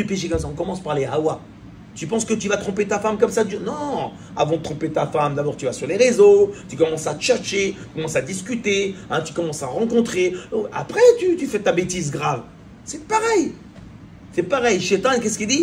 péché comme ça, on commence par les hawa. Tu penses que tu vas tromper ta femme comme ça? Non. Avant de tromper ta femme, d'abord tu vas sur les réseaux, tu commences à tchatcher, tu commences à discuter, hein, tu commences à rencontrer. Après, tu fais ta bêtise grave. C'est pareil. C'est pareil. Shaitan, qu'est-ce qu'il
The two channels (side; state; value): both; identical; correlation 1.00